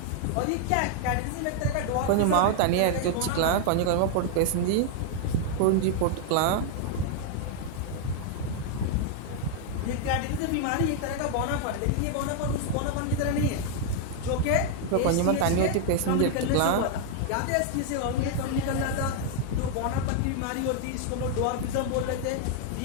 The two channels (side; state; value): both; different; correlation 0.00